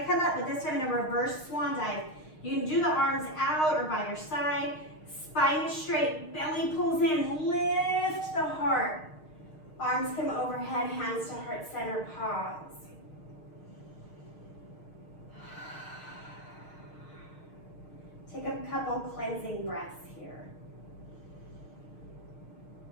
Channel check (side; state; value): right; late; 6.5 ms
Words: come up, but this time in a reverse swan dive. You can do the arms out or by your side. Spine is straight, belly pulls in, lift the heart. Arms come overhead, hands to heart center, pause. Take a couple cleansing breaths here.